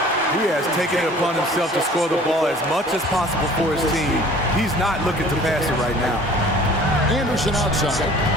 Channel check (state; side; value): normal; both; correlation 0.49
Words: He has taken it upon himself to score the ball as much as possible for his team. He's not looking to pass it right now. Anderson outside.